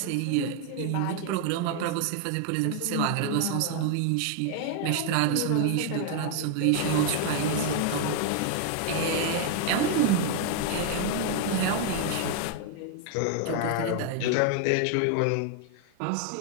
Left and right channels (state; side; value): different; both; correlation 0.00